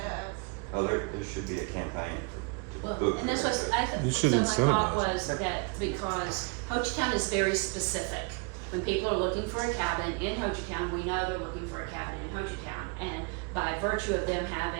of. Oh, there should be a campaign to Well, book. and that's what You should so my thought incentivize. was that because Hochatown is very specific. When people are looking for a cabin in Hochatown, we know they're looking for a cabin in Hochatown. And by virtue of them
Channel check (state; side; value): quieter; left; 31.5 dB